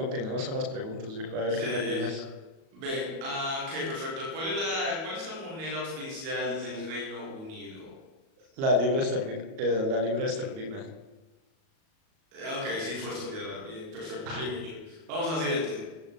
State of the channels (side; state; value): left; late; 37 ms